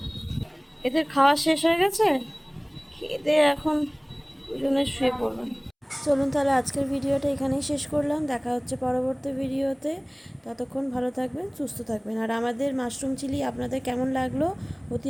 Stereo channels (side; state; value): both; identical; correlation 1.00